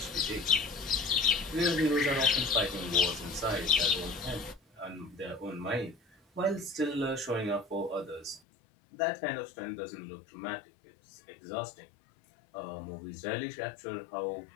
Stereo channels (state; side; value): drops out; right; at 8.4 s